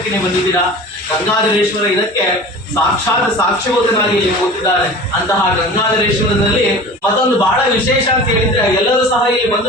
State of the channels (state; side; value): normal; both; correlation 0.39